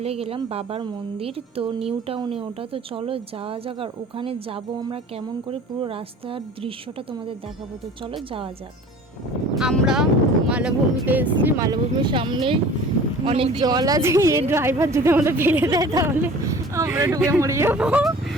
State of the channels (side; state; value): both; normal; correlation 0.44